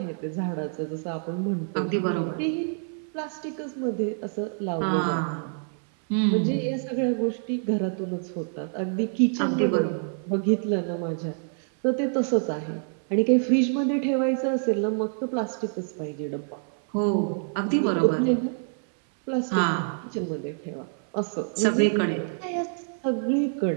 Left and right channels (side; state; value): left; silent; 60 dB below the other